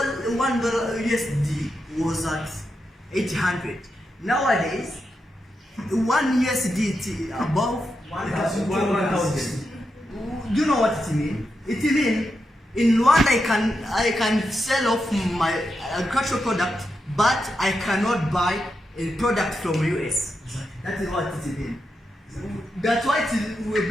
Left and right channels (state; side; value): normal; both; correlation 0.86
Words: USD was at 800. Nowadays, 1 USD above 1,000. Do you know what it means? It means in Rwanda I can sell off my agricultural product, but I cannot buy a product from US. That is what it means. That's why it will